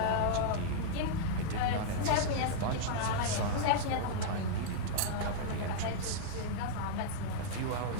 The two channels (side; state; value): both; different; correlation -0.02